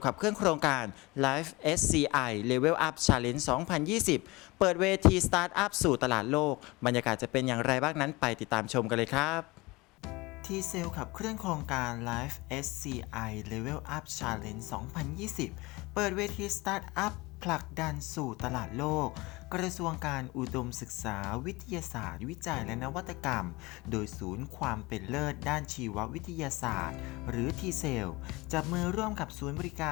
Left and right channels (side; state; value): right; quieter; 22.8 dB